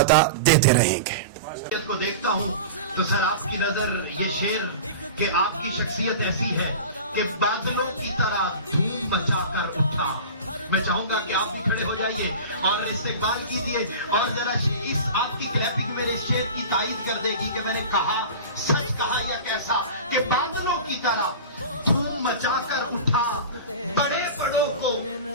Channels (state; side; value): inverted; both; correlation -0.33